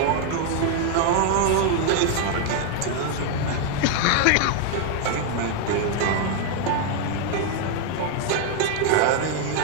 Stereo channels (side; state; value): both; different; correlation 0.00